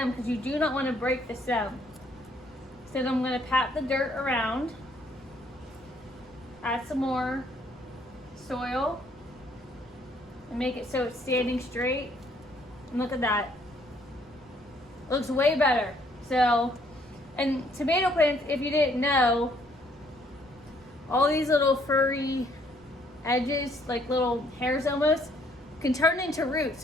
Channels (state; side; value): noise; left; rumble, 28 dB below the sound